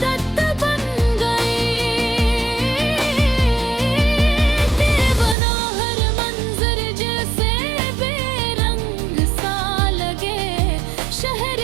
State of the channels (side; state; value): left; drops out; at 5.4 s